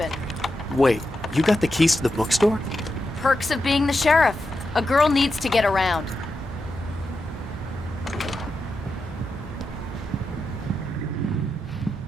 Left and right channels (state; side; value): normal; both; correlation 0.88